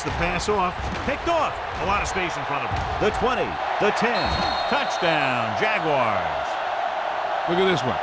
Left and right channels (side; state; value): both; identical; correlation 1.00